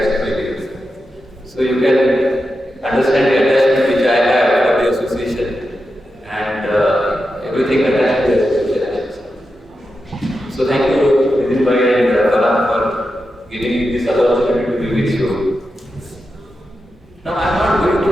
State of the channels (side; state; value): both; normal; correlation 0.89